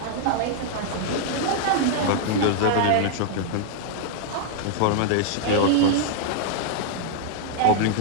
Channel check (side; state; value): both; different; correlation 0.00